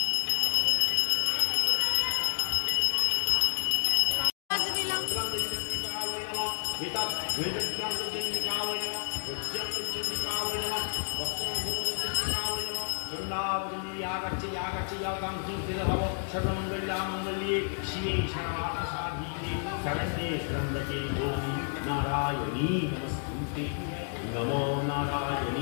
सर्वमंगल्ये शिवे सर्वार्थसाधिके शरण्ये त्र्यंबके गौरी नारायणी नमस्तुते। नमो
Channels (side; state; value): right; silent; 58 dB below the other